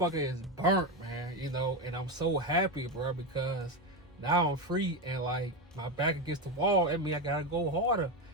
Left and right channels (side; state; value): both; normal; correlation 0.13